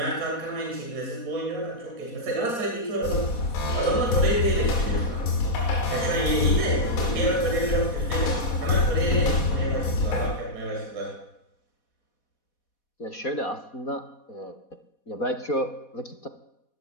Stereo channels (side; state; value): right; late; 4.1 ms